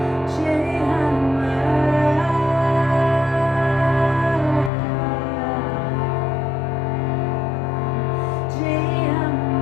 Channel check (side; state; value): right; drops out; at 4.7 s